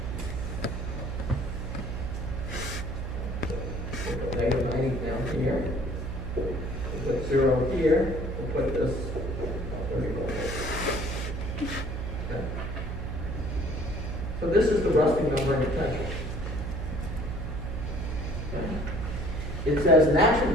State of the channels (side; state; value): right; noise; hum, 4 dB below the sound